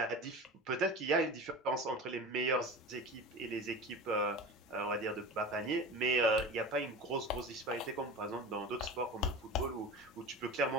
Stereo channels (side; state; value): both; normal; correlation 0.32